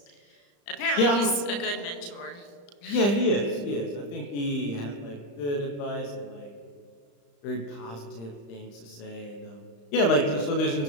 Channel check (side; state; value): right; late; 35 ms